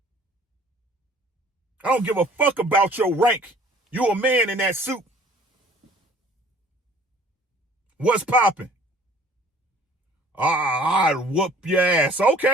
I don't give a fuck about your rank. You a man in that suit. What's popping? I'd whoop your ass.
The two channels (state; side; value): normal; both; correlation 0.53